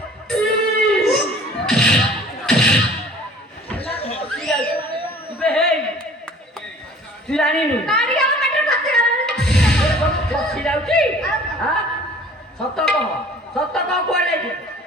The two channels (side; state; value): both; normal; correlation 0.50